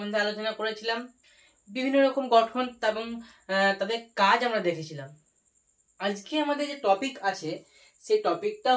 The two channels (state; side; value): identical; both; correlation 1.00